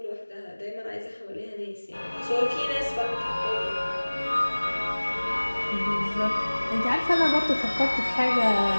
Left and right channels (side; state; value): both; inverted; correlation -1.00